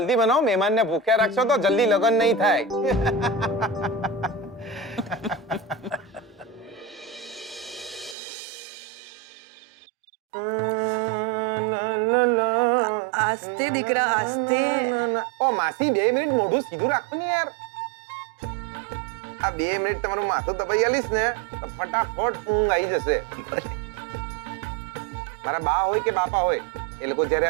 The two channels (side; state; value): left; drops out; at 8.2 s